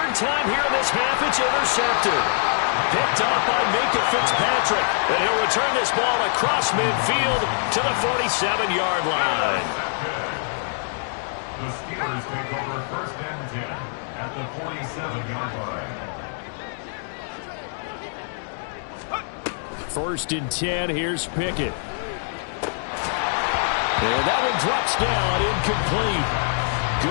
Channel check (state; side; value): silent; right; digital silence